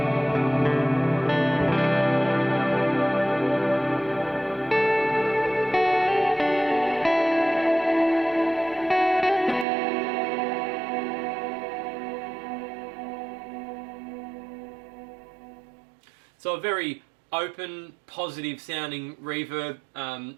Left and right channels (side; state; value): left; drops out; at 9.7 s